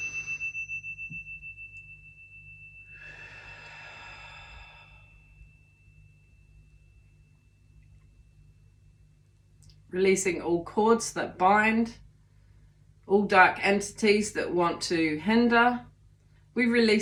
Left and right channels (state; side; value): identical; both; correlation 1.00